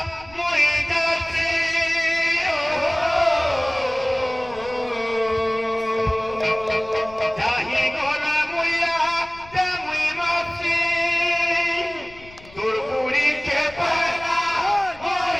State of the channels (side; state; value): left; noise; rumble, 21 dB below the sound